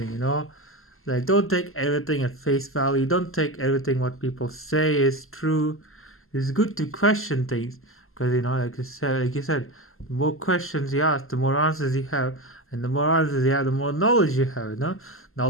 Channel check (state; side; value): late; right; 0.62 ms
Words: you know? Like, don't take everything at face value. Don't take everything what people say is true. It's good to question things. Because, you know, like you said, the more questions you ask, the more answers you have. And the more answers you have, the more knowledge you have, you know?